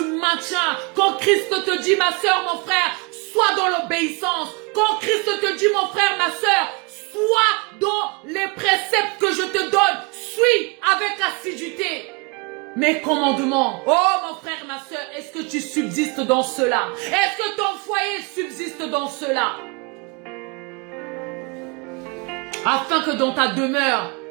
maintiens quand Christ te dit, ma soeur, mon frère, sois dans l'obéissance. Quand Christ te dit, mon frère, ma soeur, sois dans les préceptes que je te donne. Suis avec assiduité mes commandements. Oh, mon frère, ma soeur, est-ce que tu subsistes dans cela? Est-ce que ton foyer subsiste dans cela? Afin que dans ta demeure,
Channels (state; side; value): quieter; left; 30.9 dB